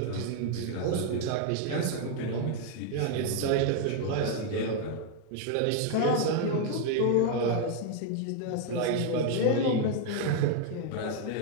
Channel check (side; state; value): both; different; correlation 0.00